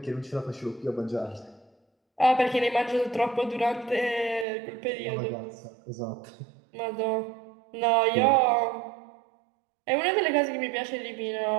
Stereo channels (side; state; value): left; drops out; at 4.5 s